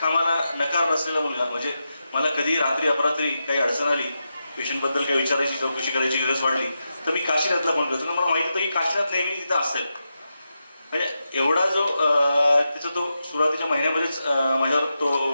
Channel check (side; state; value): both; inverted; correlation -0.88